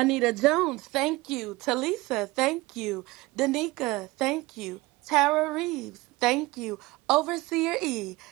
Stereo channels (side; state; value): left; quieter; 21.3 dB